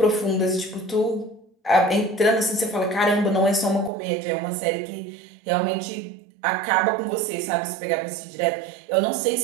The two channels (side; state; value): left; drops out; at 3.9 s